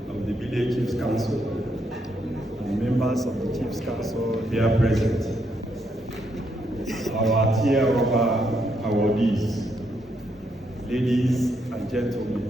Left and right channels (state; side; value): normal; both; correlation 0.77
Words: of the Bille Chiefs Council, and members of the Chiefs Council here present, our tier rubber awardees, ladies and gentlemen.